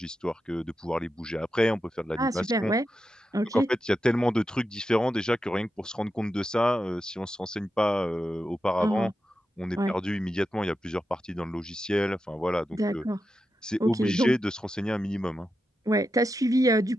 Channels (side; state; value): both; normal; correlation 0.88